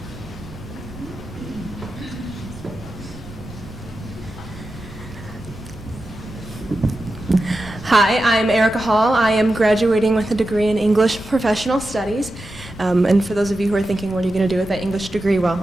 Hi, I'm Erica Hall. I am graduating with a degree in English Professional Studies. And for those of you who are thinking, what are you going to do with that English degree? Well,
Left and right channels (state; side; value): noise; right; rumble, 18 dB below the sound